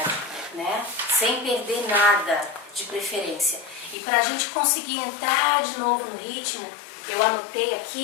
né? Sem perder nada de preferência. E para a gente conseguir entrar de novo no ritmo, eu anotei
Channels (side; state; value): right; drops out; at 4.0 s